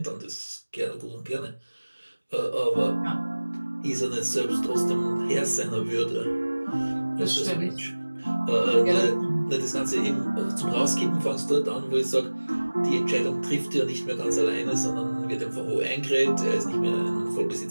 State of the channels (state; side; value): inverted; both; correlation -1.00